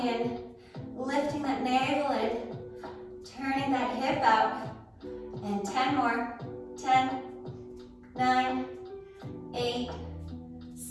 lifting that navel in, turning that hip out. And 10 more. 10, 9, 8,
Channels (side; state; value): both; identical; correlation 1.00